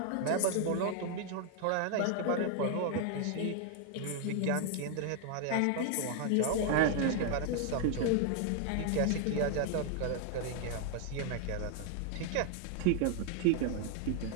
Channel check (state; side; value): different; both; correlation 0.00